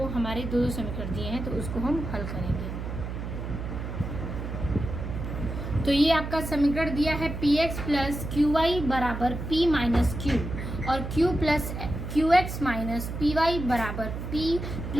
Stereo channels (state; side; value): noise; right; hum, 6 dB below the sound